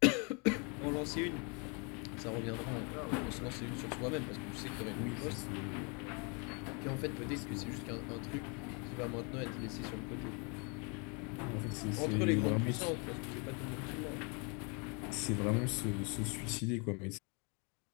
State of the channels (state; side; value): quieter; right; 34.1 dB